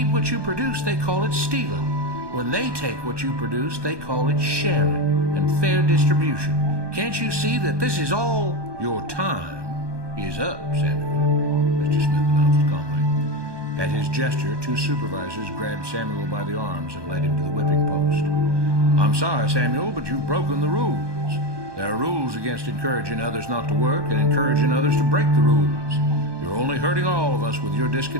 what you produce, they call it stealing. When they take what you produce, they call it sharing and fair distribution. Can't you see that this is all? Your time is up, Samuel, Mr. Smith announced calmly. At his gesture, 2 supervisors grabbed Samuel by the arms and led him to the whipping post. I'm sorry, Samuel, but you've broken the rules. There are rules against encouraging others not to work and encouraging others to break the rules. You're only hurting all of us with your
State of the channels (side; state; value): left; late; 1.2 ms